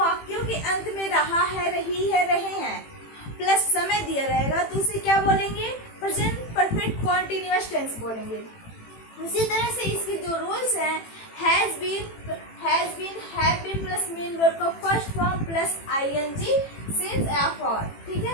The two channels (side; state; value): right; late; 18 ms